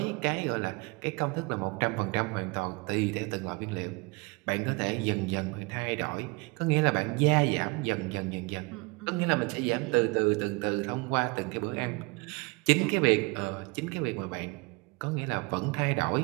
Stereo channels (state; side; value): quieter; left; 27.4 dB